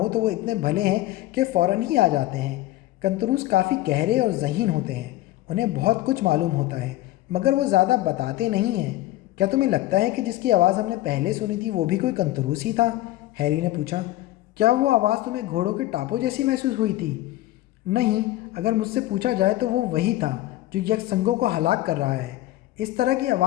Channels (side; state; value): right; quieter; 16.1 dB